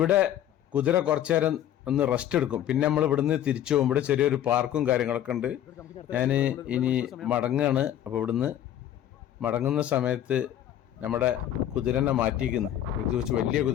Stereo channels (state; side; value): quieter; right; 11.3 dB